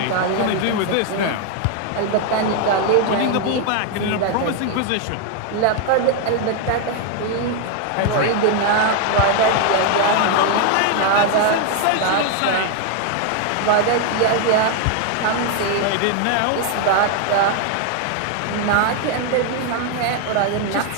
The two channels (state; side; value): different; both; correlation 0.01